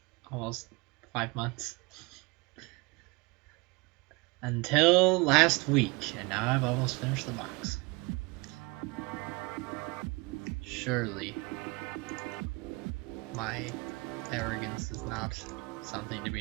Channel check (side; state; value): left; quieter; 26.4 dB